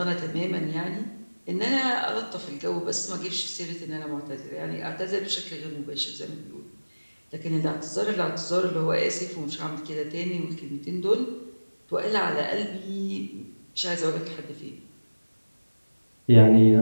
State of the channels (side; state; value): both; inverted; correlation -1.00